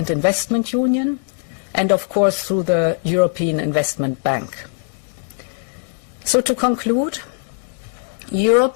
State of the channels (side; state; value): right; silent; 65 dB below the other